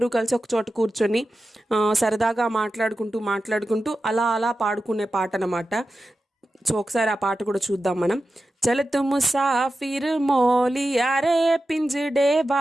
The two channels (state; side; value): normal; both; correlation 0.92